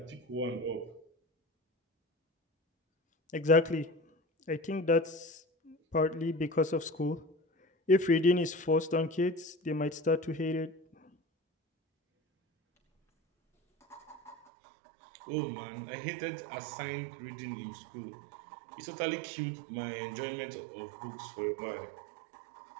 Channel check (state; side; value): drops out; left; at 14.4 s